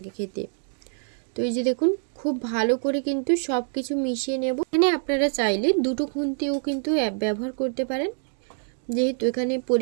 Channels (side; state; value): left; silent; 61 dB below the other